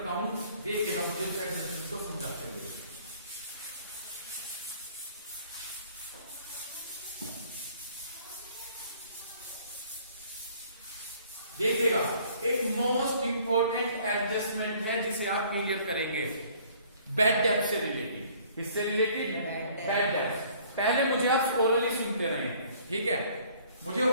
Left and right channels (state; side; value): inverted; both; correlation -0.57